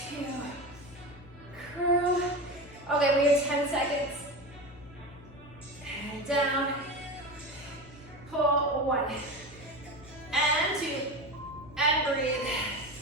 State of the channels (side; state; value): left; noise; hum, 20 dB below the sound